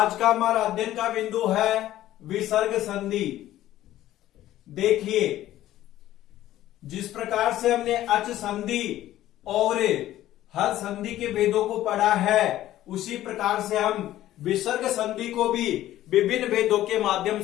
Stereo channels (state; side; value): quieter; right; 13.9 dB